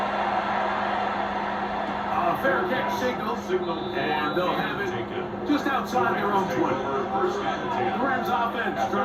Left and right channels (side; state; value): both; identical; correlation 1.00